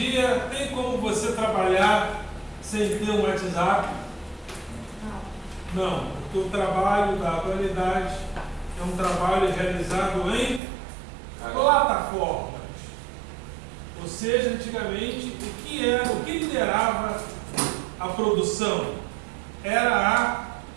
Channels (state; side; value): drops out; left; at 10.6 s